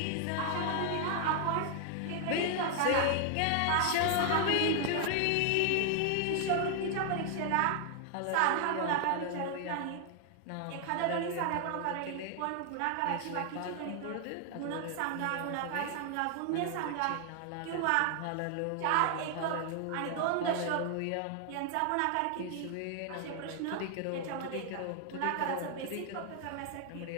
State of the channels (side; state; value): both; different; correlation 0.00